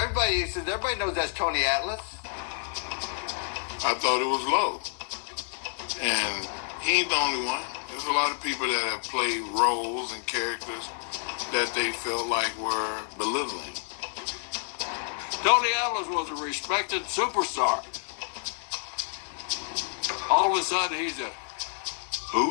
knows that's Tony Atlas. I thought it was low. And he ain't the only one. There's a lot of people that have played roles and characters that they felt like were belittling. Tony Atlas was a respected superstar. All of a sudden, he's a...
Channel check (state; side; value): silent; right; 59 dB below the other